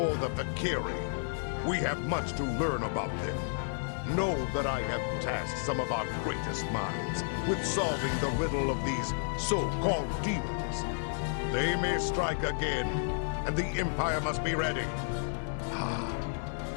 the Fek'ihri, we have much to learn about them. Know that I have tasked some of our greatest minds with solving the riddle of these so-called demons. They may strike again, and the Empire must be ready.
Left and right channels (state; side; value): silent; right; digital silence